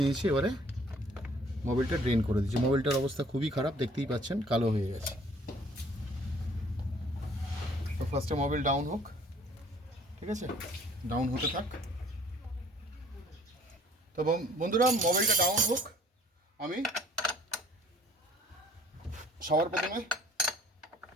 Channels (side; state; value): both; normal; correlation 0.56